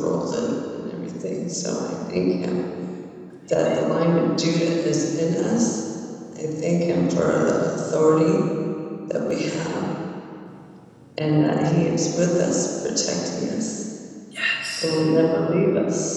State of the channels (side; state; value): both; identical; correlation 1.00